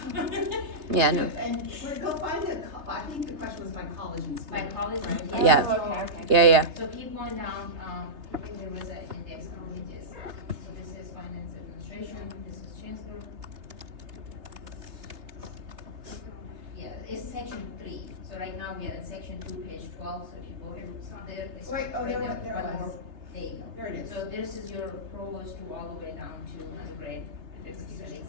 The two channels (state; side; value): late; left; 3.3 ms